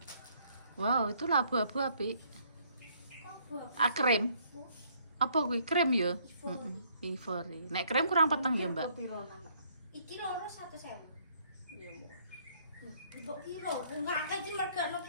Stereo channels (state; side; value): inverted; both; correlation -0.65